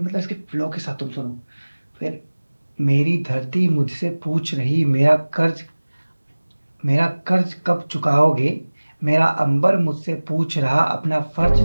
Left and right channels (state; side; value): inverted; both; correlation -1.00